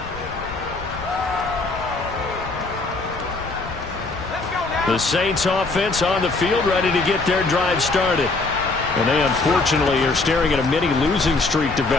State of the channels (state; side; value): quieter; right; 3.5 dB